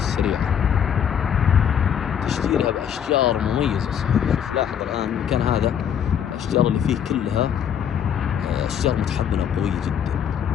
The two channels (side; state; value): right; quieter; 8.6 dB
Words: تشجيرها بأشجار مميزة. شوف لاحظ الآن المكان هذا الأشجار اللي فيه كلها أشجار متحملة قوية جدا،